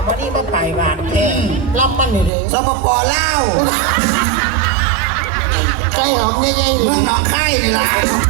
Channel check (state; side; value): drops out; left; at 2.3 s